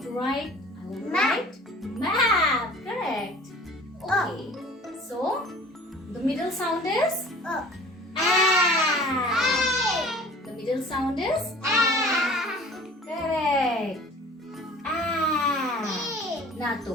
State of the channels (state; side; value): normal; both; correlation 0.46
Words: to write? I want to write map. Correct. Okay. So the middle sound is a. The middle sound is correct. ना तो